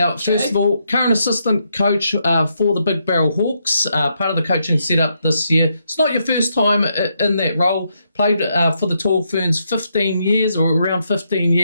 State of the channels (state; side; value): inverted; both; correlation -0.79